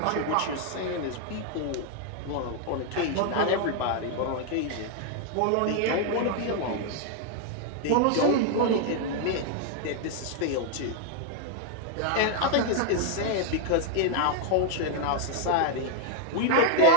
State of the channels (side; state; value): both; different; correlation 0.00